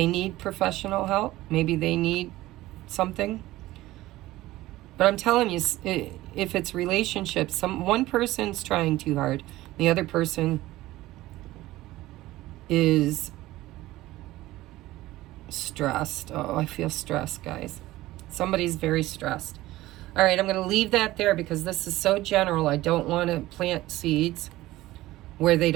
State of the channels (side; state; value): left; quieter; 17.0 dB